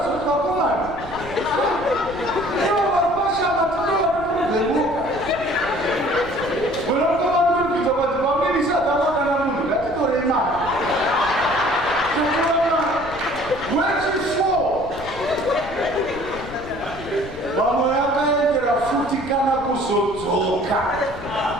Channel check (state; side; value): noise; left; rumble, 15 dB below the sound